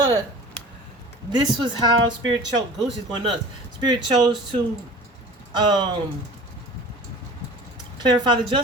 this was how Spirit chose. Goosey's going nuts. Spirit chose to clarify the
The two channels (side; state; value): both; normal; correlation 0.41